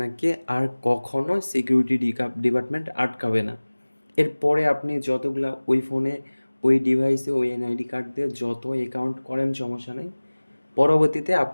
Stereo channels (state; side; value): inverted; both; correlation -1.00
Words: আর কখনো সিকিউরিটি ডিপার্টমেন্ট আটকাবে না। এরপরে আপনি যতগুলা ওই ফোনে, ওই ডিভাইসে, ওই এনআইডি কার্ড দিয়ে যত অ্যাকাউন্ট করেন সমস্যা নাই। পরবর্তীতে